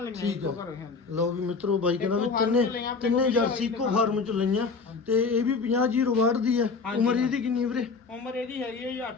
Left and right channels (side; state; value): right; quieter; 4.7 dB